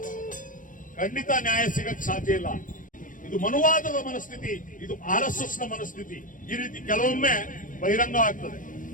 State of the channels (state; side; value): late; right; 0.39 ms